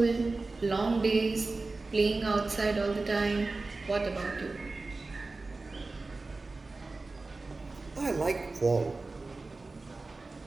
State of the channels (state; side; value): quieter; left; 3.5 dB